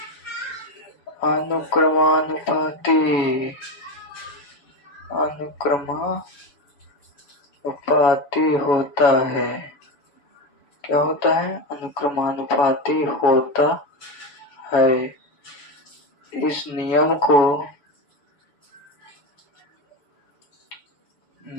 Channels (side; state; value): right; late; 7.0 ms